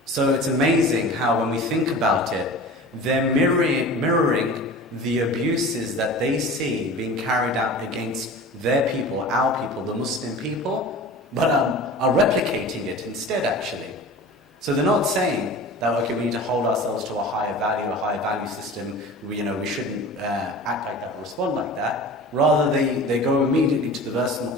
So it's amazing how when we think about it, they're mirroring the abuses that they see being carried out against their people, our people, the Muslim people, but are replicating it instead, actually. So they're not saying that, okay, we need to hold ourselves to a higher value system, we shouldn't act like that or respond like that. Rather, they go immediately to the verse in the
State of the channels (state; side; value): normal; both; correlation 0.38